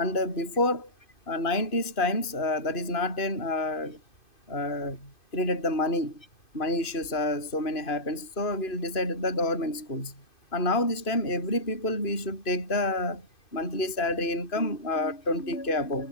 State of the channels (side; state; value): right; late; 2.5 ms